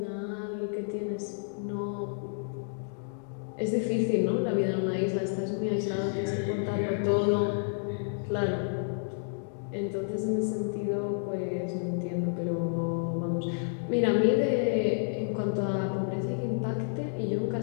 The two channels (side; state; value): right; silent; digital silence